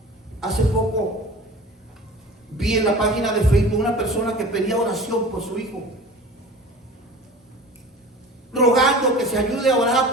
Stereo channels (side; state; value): both; normal; correlation 0.39